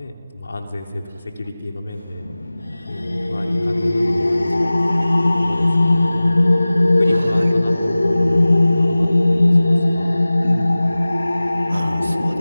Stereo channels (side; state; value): both; inverted; correlation -0.98